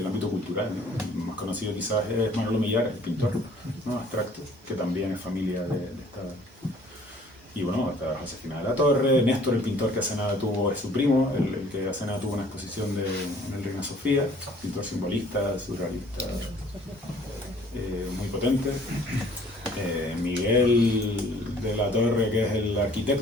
ámbito cultural, ¿no? El más conocido quizás es Manolo Millares, el pintor, ¿no?, abstracto, que también es familia de esta... Y bueno, hasta Josefina de la Torre, Néstor, el pintor que hace nada tuvo, es su primo, el que hace nada tuvo una exposición en el Reina Sofía, pintor simbolista, surrealista, muy potente. Miguel de la Torre, que es el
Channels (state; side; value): normal; both; correlation 0.55